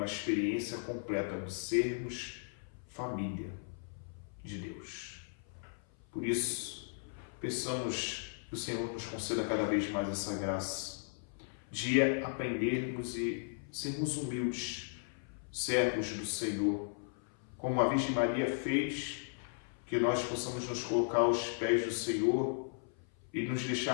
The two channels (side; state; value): right; silent; 54 dB below the other